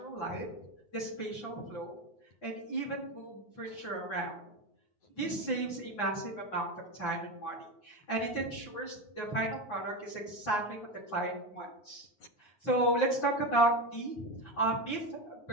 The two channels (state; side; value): late; right; 9.6 ms